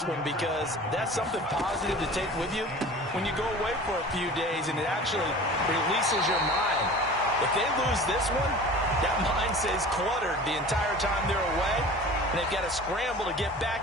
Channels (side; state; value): both; normal; correlation 0.40